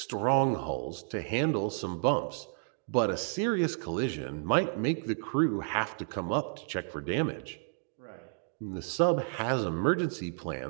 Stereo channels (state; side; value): silent; left; digital silence